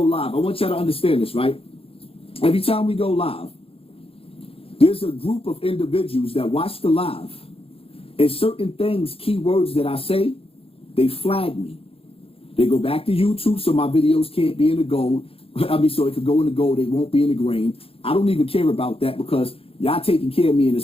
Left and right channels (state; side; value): late; right; 0.27 ms